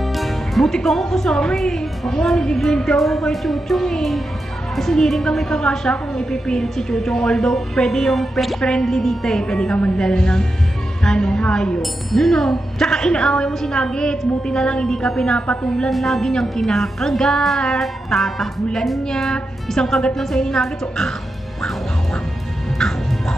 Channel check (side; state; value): both; normal; correlation 0.88